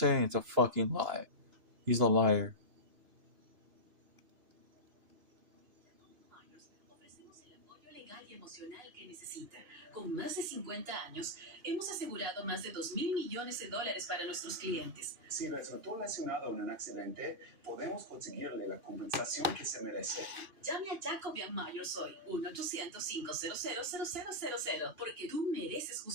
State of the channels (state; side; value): late; left; 2.9 ms